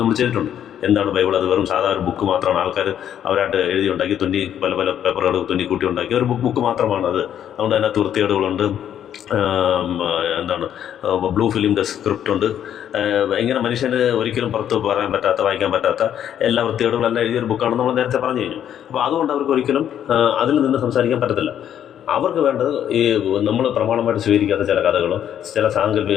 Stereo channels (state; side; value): quieter; right; 10.0 dB